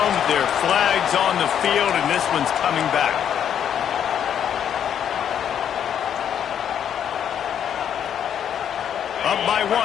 there are flags on the field, and this one's coming back. Up by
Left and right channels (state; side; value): quieter; right; 9.1 dB